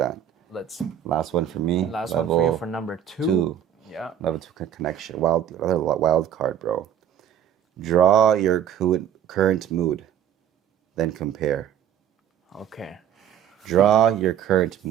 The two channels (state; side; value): quieter; left; 9.7 dB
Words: Let's Last one for me. last one for you for number 2. 2. Yeah. Level 2 connection. Another wild card, bro. Draw your current mood, then compare. Okay. Draw your current